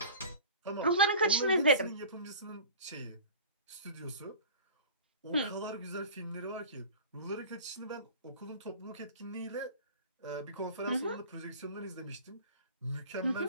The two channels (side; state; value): both; inverted; correlation -0.39